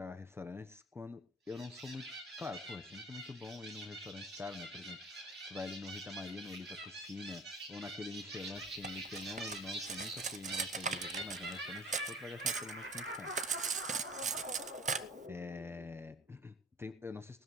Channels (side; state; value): both; normal; correlation 0.44